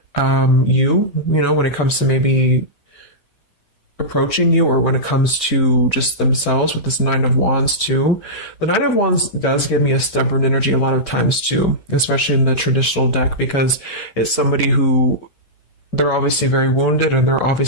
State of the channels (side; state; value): right; late; 7.6 ms